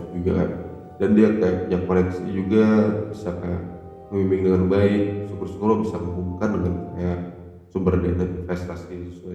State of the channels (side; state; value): both; identical; correlation 1.00